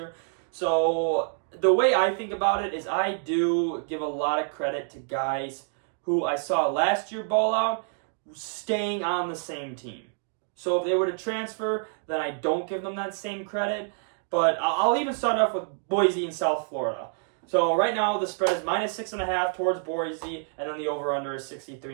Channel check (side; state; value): left; silent; 60 dB below the other